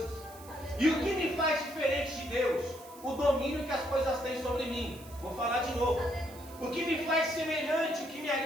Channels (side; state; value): right; noise; hiss, 20 dB below the sound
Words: E o que me faz diferente de Deus? O domínio que as coisas têm sobre mim. Vou falar de novo. O que me faz semelhante, o que me